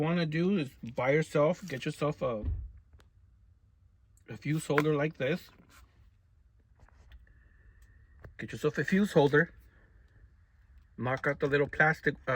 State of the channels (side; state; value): both; identical; correlation 1.00